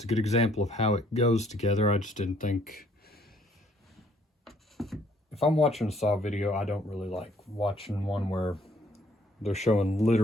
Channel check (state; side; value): normal; both; correlation 0.64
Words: a good example of how it goes together. I just didn't think, if I'm watching a saw video, I don't really like watching one where they're showing